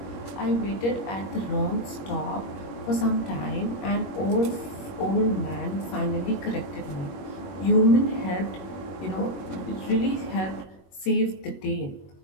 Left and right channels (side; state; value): right; late; 21 ms